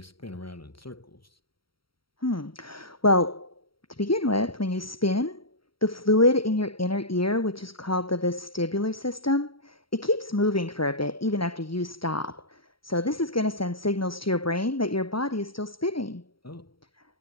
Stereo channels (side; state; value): right; late; 0.74 ms